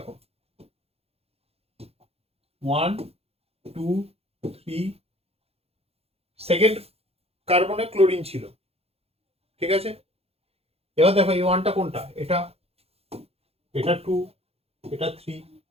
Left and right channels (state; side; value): late; left; 0.29 ms